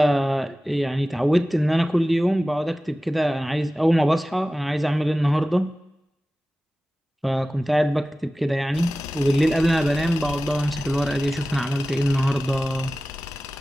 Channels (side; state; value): both; normal; correlation 0.96